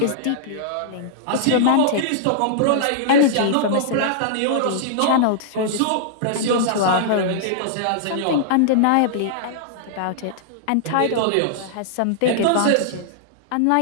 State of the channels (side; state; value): both; different; correlation -0.01